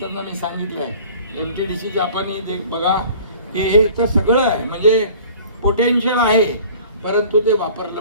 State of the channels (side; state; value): both; inverted; correlation -0.47